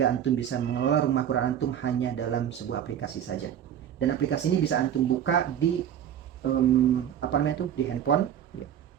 antum bisa mengelola Rumah Quran antum hanya dalam sebuah aplikasi saja. Dan aplikasi ini bisa antum buka di di handphone, ya.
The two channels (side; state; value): left; quieter; 9.8 dB